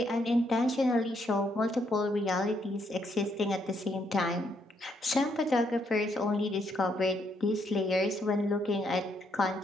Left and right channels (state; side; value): normal; both; correlation 0.74